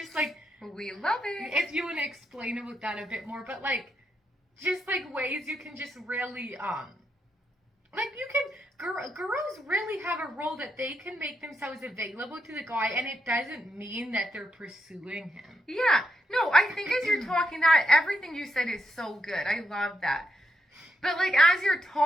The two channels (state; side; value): normal; both; correlation 0.81